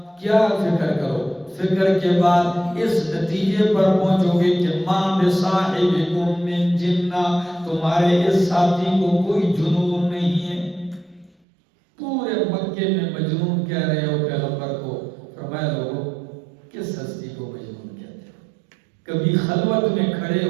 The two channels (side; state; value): left; drops out; at 11.3 s